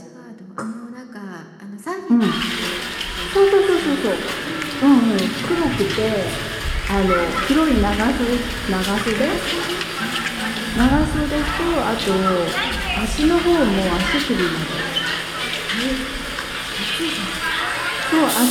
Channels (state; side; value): identical; both; correlation 1.00